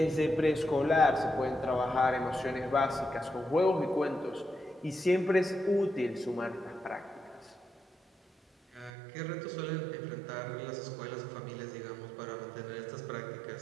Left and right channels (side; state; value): left; drops out; at 8.9 s